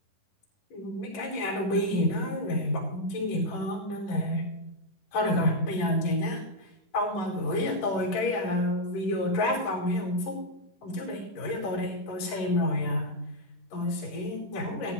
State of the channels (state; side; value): late; right; 10 ms